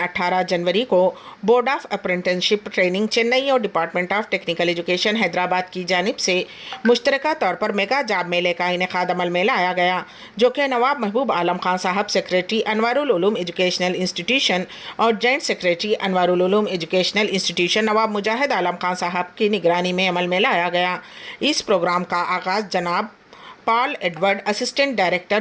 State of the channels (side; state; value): both; identical; correlation 1.00